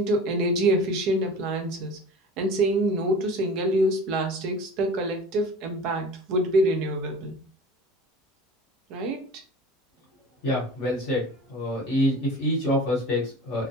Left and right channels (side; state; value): both; normal; correlation 0.39